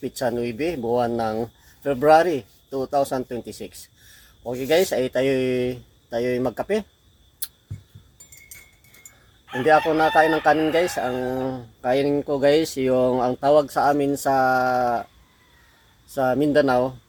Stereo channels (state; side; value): identical; both; correlation 1.00